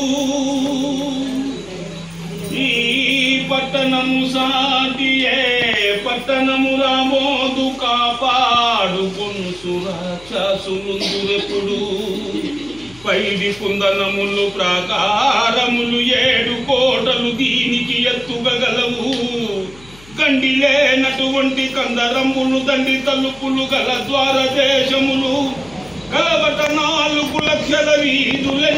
ఈ పట్టణము సాటియే పట్టణము రాబోదు కాపాడుకొను సురాక్షసులుందురెప్పుడు పైడి కుందనములు ప్రాకారములు 7 కోటలు దీనికి ఎత్తుగలవు గండిలేనటువంటి కందరములు దండి తలుపులు గల ద్వార దేశములు కలవట 4 లక్షల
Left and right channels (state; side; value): noise; left; hum, 23 dB below the sound